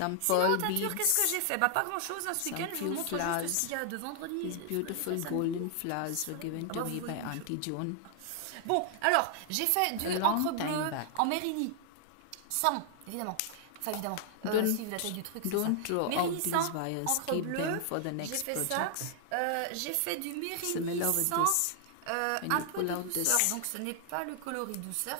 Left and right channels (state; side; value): different; both; correlation 0.00